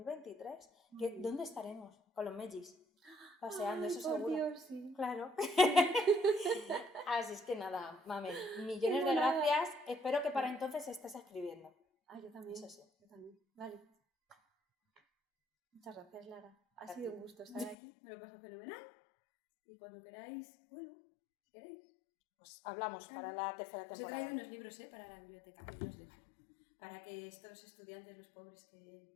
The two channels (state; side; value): drops out; right; at 17.8 s